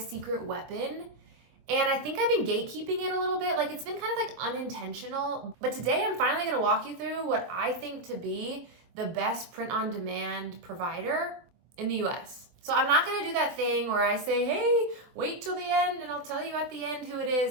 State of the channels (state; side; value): late; left; 23 ms